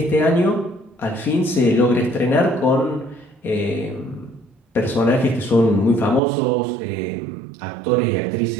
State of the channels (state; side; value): drops out; left; at 6.2 s